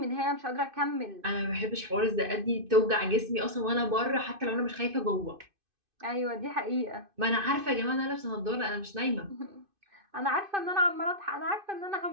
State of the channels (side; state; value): left; late; 2.5 ms